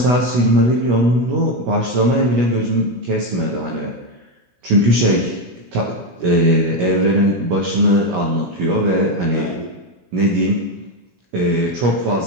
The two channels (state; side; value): late; left; 16 ms